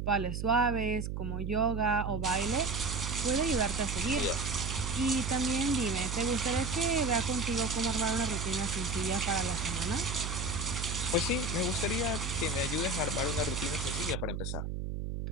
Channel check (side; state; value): right; noise; hum, 3 dB below the sound